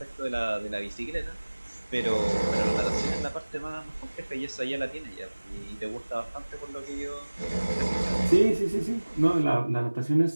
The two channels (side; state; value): both; inverted; correlation -1.00